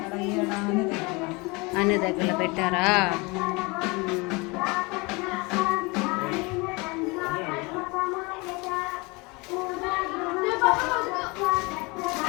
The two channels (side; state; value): right; quieter; 26.5 dB